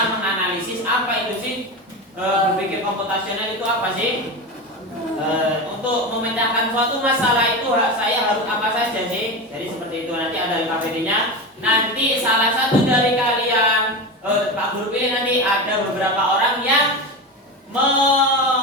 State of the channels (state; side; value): normal; both; correlation 0.22